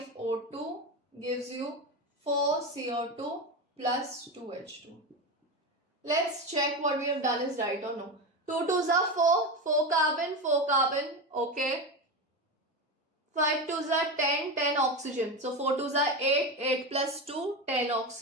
gives you 4CO2 plus 2H2. Let's check what we have done is right or no. 2 2s are 4, 4 carbon, okay. 5 2s are 10, 10 oxygen. So 4 2s are 8, 8 plus 2, 10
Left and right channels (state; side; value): normal; both; correlation 0.19